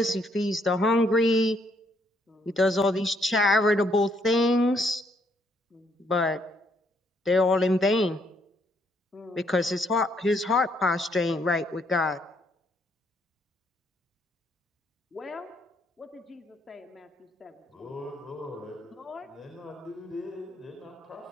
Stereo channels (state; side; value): normal; both; correlation 0.71